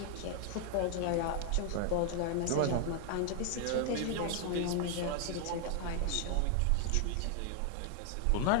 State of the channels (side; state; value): both; different; correlation 0.00